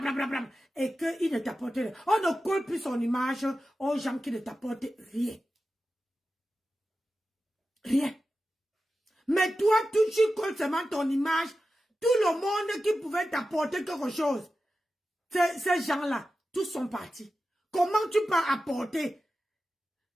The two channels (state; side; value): normal; both; correlation 0.93